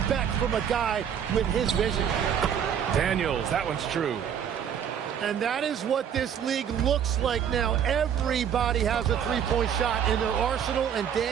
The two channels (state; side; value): quieter; left; 8.5 dB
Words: from a guy with his vision. Daniels, that one's true. And that is what this league looks like now. Everybody has a three-point shot in their arsenal, and